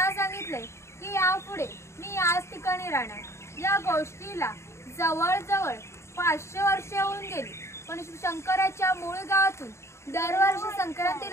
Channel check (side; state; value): right; late; 0.13 ms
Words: सांगितले की यापुढे मी याच ठिकाणी राहणार। या गोष्टीला जवळजवळ 500 वर्षे होऊन गेली, पण शंकराच्या मूळ गावातून दरवर्षी